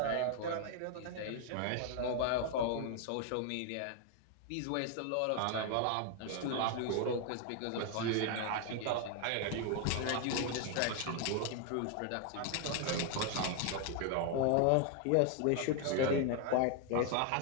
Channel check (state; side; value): different; both; correlation 0.00